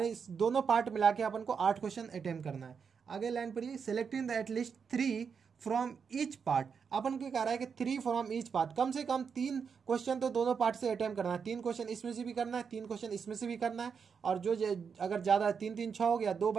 दोनों पार्ट मिला के अपन को 8 क्वेश्चन अटेम्प्ट करना है। आगे लाइन पढ़िए, selecting the at least 3 from each part. अपन को कह रहा है कि 3 फ्रॉम ईच पार्ट, कम से कम 3 क्वेश्चन तो दोनों पार्ट से अटेम्प्ट करना है। 3 क्वेश्चन इसमें से भी करना है, 3 क्वेश्चन इसमें से भी करना है, और जो अगर ज़्यादा 3 3 6 हो गया, 2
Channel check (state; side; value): quieter; left; 6.2 dB